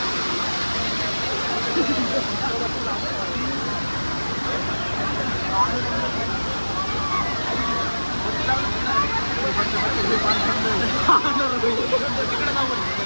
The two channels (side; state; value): both; inverted; correlation -1.00